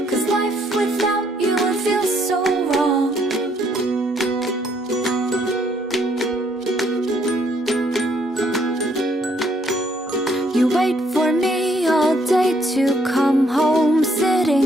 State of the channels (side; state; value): both; normal; correlation 0.69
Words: 'cause life without you would feel so wrong. You wait for me all day to come home,